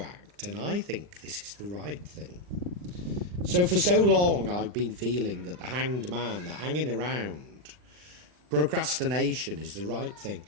and I think this is the right thing. So for so long, I've been feeling that the hanged man, the hanging around, procrastination is the right thing.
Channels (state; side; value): late; left; 39 ms